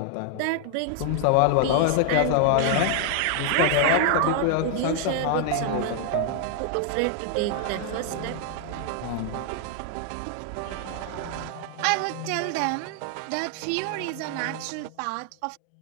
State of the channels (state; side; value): different; both; correlation 0.00